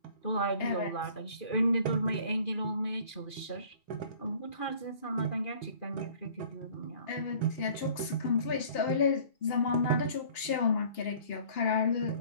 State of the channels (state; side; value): late; right; 2.8 ms